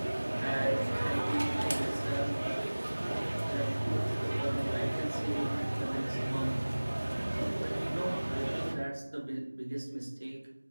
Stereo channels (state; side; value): inverted; both; correlation -1.00